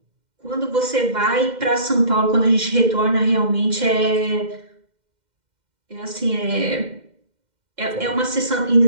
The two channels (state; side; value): late; left; 2.1 ms